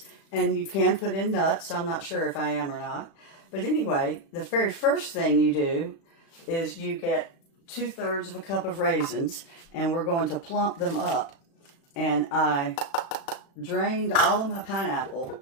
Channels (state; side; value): late; right; 36 ms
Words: And you can put in nuts. I'm not sure if I am or not. But anyway, the very first thing you do is you get 2/3 of a cup of raisins, and we're going to plump them up. And I drained all of my pineapple